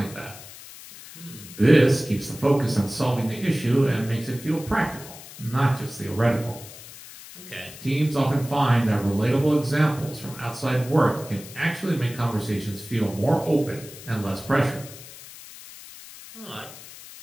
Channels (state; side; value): noise; left; hiss, 16 dB below the sound